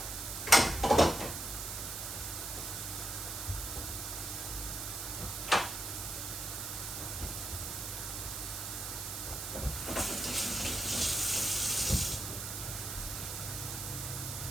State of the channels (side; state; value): right; noise; hiss, 5 dB below the sound